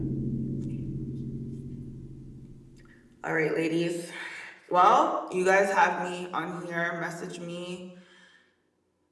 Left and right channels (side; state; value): both; identical; correlation 1.00